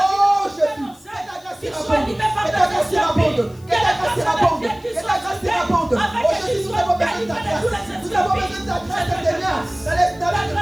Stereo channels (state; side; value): noise; left; hiss, 27 dB below the sound